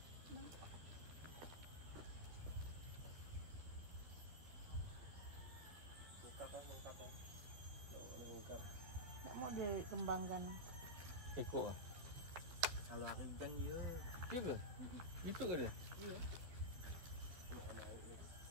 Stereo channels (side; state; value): left; late; 12 ms